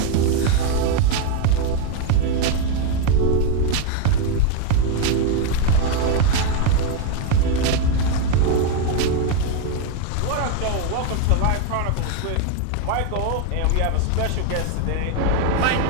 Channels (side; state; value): both; different; correlation 0.01